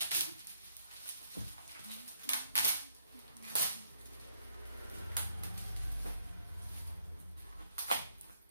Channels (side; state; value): both; inverted; correlation -0.72